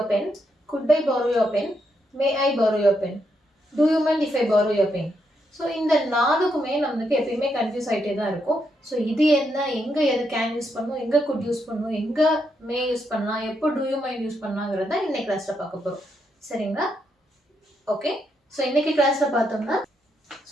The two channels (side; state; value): both; normal; correlation 0.80